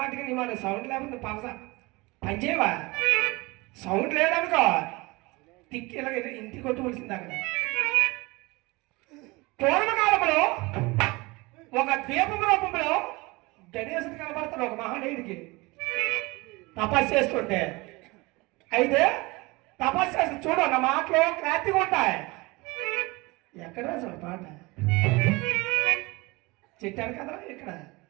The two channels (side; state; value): left; quieter; 23.8 dB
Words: నీ మాట సౌండ్ లేకపోతే పనిచేయవా? సౌండ్ లేదనుకో తిక్కి ఇలా ఇంటికి కొట్టుకోవాల్సింది. అక్కడ పూర్వకాలంలో ఒక ద్వీపం రూపంలో గణేశుడు కనబడతాడు ఒక మహానీయుడికి తపస్సు చేస్తుంటే. అయితే తపస్సు చేసి చూడు, నా మాటలు క్లారిటీగా ఉంటాయి. ఎక్కడ అసలు పాట చెట్టాను కదా ఇక్కడ